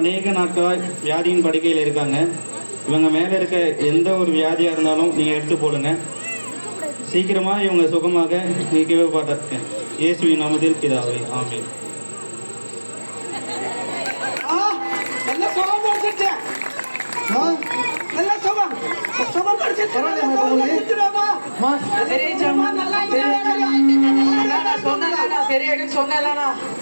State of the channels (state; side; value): inverted; both; correlation -1.00